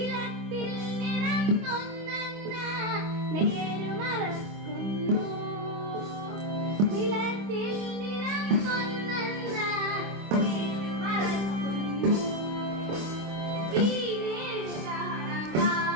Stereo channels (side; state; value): left; late; 26 ms